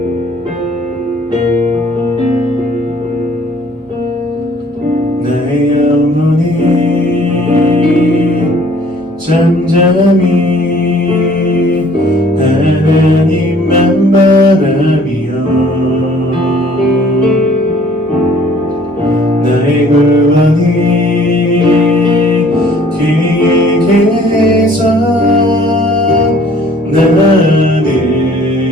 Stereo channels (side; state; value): both; normal; correlation 0.56